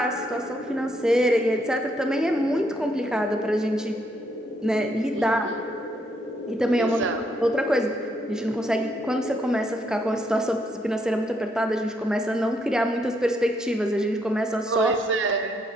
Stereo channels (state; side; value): normal; both; correlation 0.74